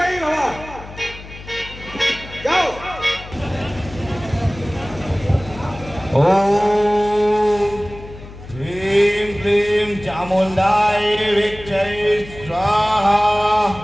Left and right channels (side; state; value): left; noise; hum, 16 dB below the sound